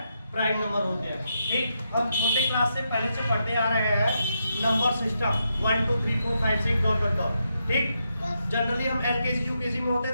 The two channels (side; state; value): both; inverted; correlation -0.83